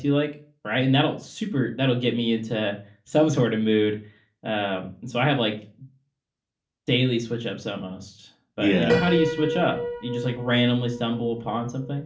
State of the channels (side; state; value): both; identical; correlation 1.00